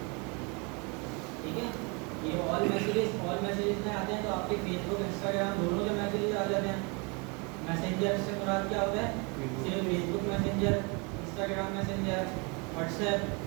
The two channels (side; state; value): left; quieter; 31.0 dB